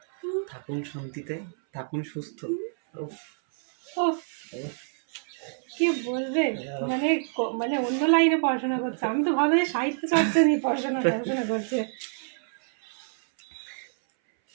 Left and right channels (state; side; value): silent; left; 60 dB below the other